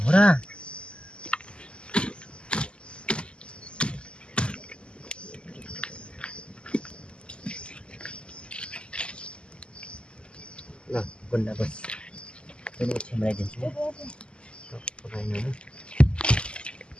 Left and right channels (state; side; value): late; right; 0.052 ms